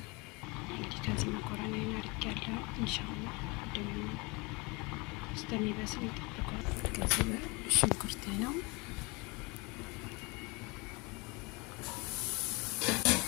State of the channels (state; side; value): quieter; right; 27.1 dB